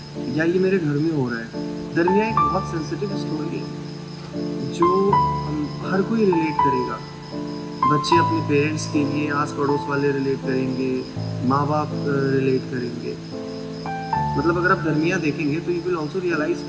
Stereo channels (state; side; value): identical; both; correlation 1.00